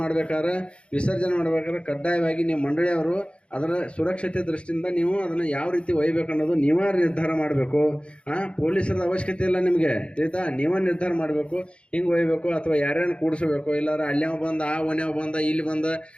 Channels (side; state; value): right; late; 0.058 ms